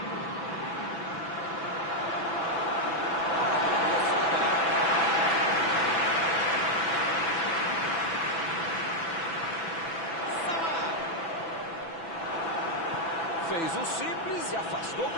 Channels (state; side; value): late; right; 6.0 ms